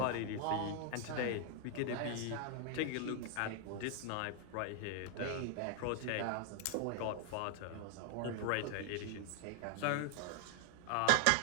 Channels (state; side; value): different; both; correlation 0.00